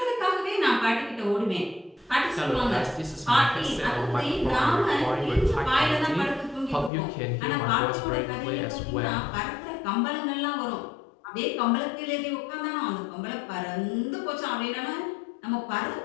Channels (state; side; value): drops out; right; at 6.9 s